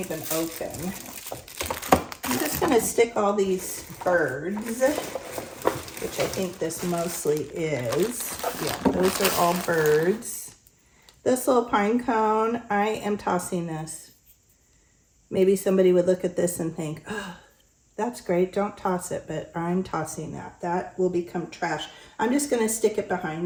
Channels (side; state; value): both; identical; correlation 1.00